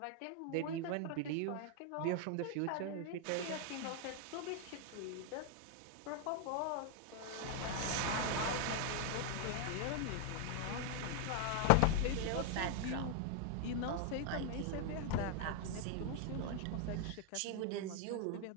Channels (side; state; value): both; different; correlation 0.00